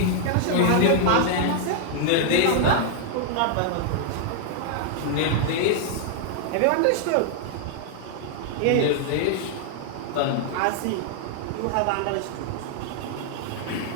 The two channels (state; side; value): different; both; correlation 0.00